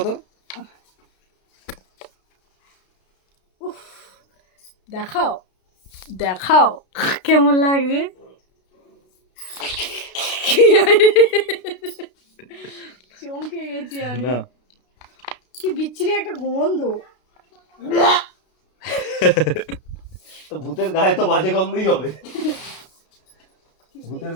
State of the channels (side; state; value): right; late; 32 ms